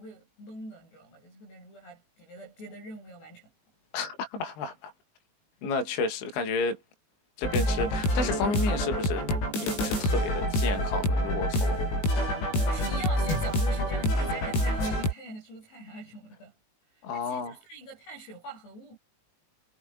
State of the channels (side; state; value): right; late; 19 ms